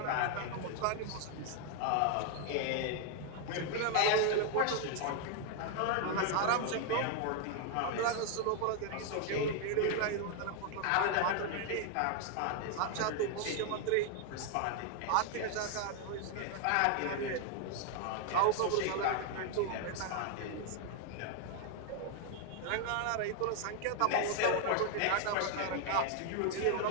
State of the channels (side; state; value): both; different; correlation 0.00